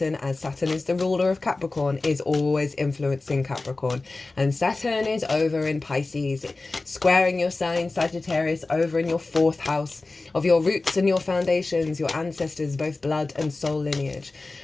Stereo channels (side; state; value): right; quieter; 3.4 dB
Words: as Saturn is the ruler of Capricorn, is always influencing Capricorn. And Saturn is over in Pisces, squaring your sign Sagittarius over in your 4th house of your roots and your foundations, your ancestors, both blood and soul lineage,